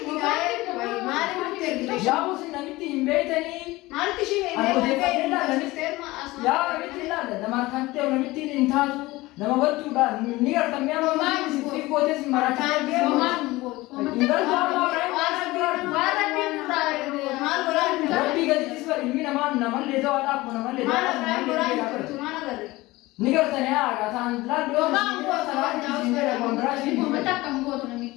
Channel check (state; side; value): quieter; right; 19.9 dB